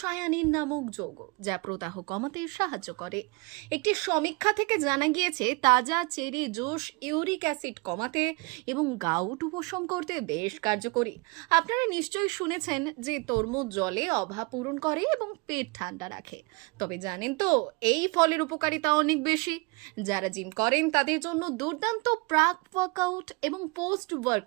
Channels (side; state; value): left; quieter; 27.8 dB